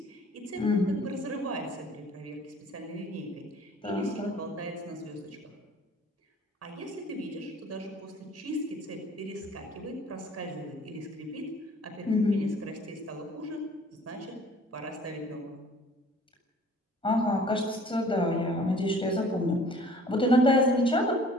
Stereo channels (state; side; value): normal; both; correlation 0.52